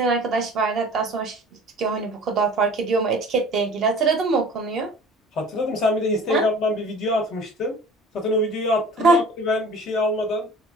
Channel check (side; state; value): both; normal; correlation 0.44